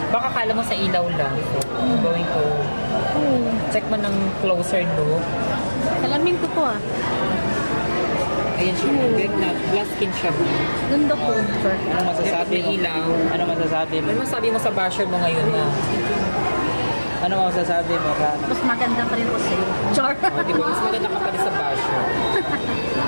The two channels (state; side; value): inverted; both; correlation -1.00